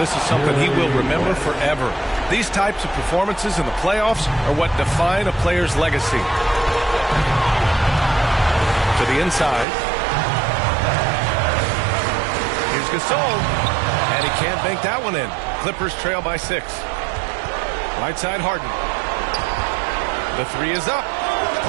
is something he will remember forever. These types of performances in the playoffs are what define a player's legacy. To the inside. Here's Gasol. And he can't bank that one in. Clippers trail by 6. Right side Harden. The 3 is up.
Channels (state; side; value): drops out; left; at 9.7 s